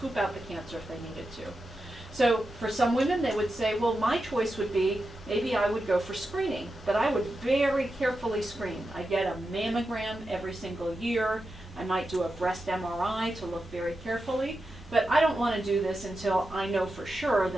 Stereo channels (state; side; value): normal; both; correlation 0.89